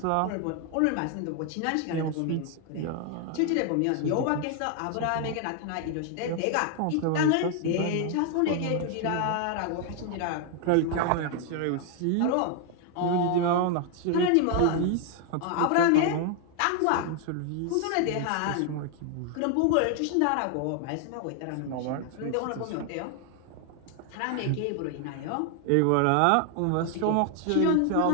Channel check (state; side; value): different; both; correlation 0.00